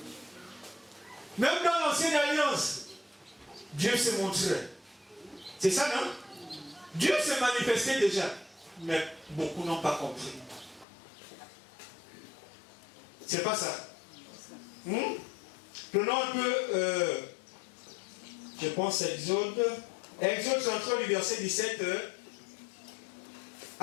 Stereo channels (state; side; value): drops out; right; at 10.9 s